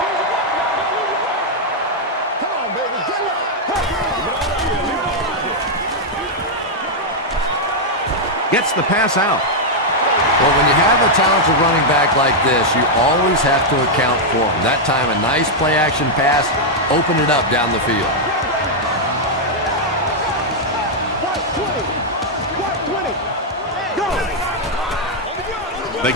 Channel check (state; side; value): normal; both; correlation -0.02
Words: Gets the pass out. Well, when you have a talented running back like this, you always have to account for him. That time, a nice play-action pass opened it up down the field. They